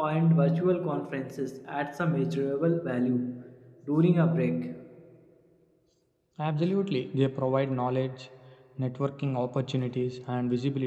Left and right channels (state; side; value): identical; both; correlation 1.00